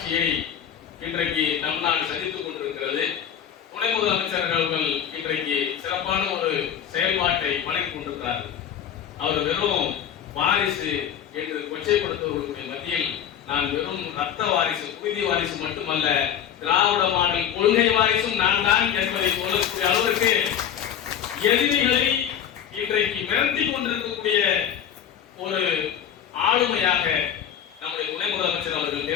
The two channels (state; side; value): quieter; right; 9.2 dB